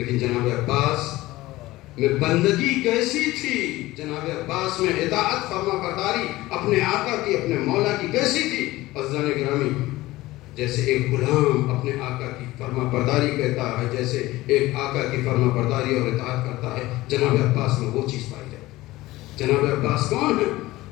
جناب عباس میں بندگی کیسی تھی، جناب عباس میں اطاعت فرما برداری اپنے آقا کی، اپنے مولا کی کیسی تھی۔ عزیزان گرامی، جیسے ایک غلام اپنے آقا کی فرما برداری کہتا ہے، جیسے ایک آقا کی فرما برداری اور اطاعت کرتا ہے، جناب عباس میں وہ چیز پائی جاتی ہے۔ جناب عباس کون ہے؟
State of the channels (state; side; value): quieter; right; 18.2 dB